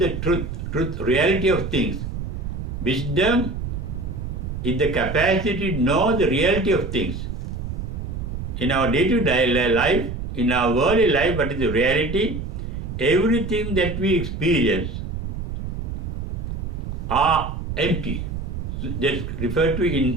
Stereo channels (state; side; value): noise; right; rumble, 5 dB below the sound